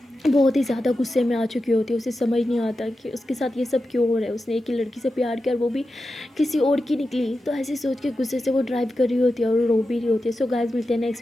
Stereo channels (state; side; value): normal; both; correlation 0.91